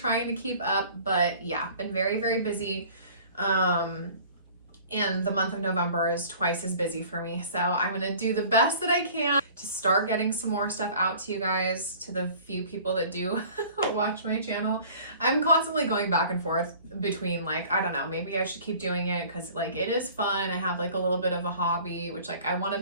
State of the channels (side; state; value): both; inverted; correlation -0.48